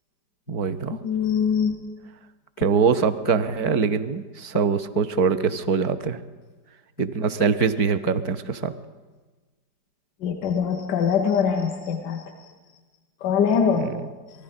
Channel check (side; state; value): right; late; 4.6 ms